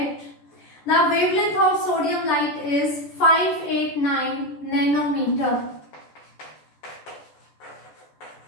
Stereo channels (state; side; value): late; right; 14 ms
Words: The wavelength of sodium light is 589 nanometer.